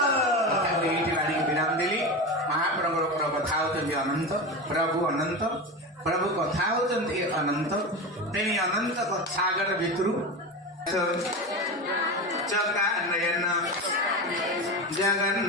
विराम दिली महाप्रभु कथा होती अनंत प्रभु अनंत प्रभु कथा होती अनंत तेनी अनंत सागर भितर चका नयन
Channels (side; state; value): both; normal; correlation 0.23